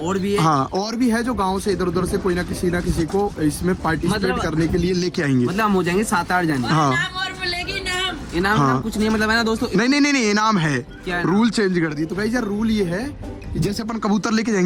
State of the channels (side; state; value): both; identical; correlation 1.00